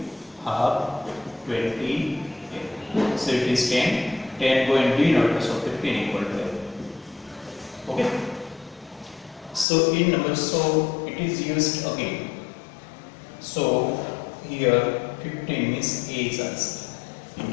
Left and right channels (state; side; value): drops out; right; at 9.7 s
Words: half 20. So it is 10. 10 go in denominator, so 15 equal to 8. Okay. So in number, so it is used again. So here 15 means A is answer in